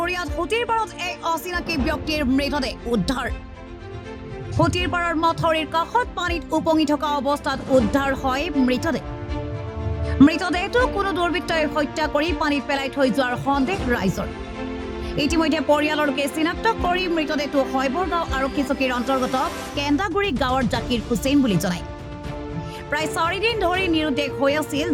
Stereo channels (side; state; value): both; identical; correlation 1.00